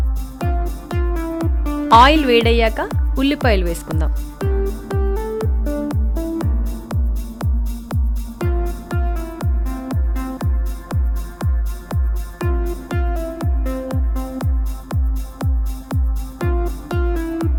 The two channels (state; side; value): identical; both; correlation 1.00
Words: ఆయిల్ వేడయ్యాక ఉల్లిపాయలు వేసుకుందాం.